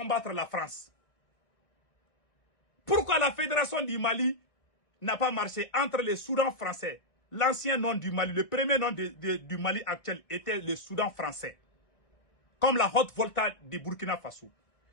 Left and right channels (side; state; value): right; late; 1.8 ms